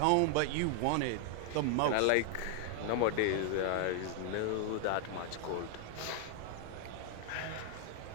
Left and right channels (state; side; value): different; both; correlation 0.00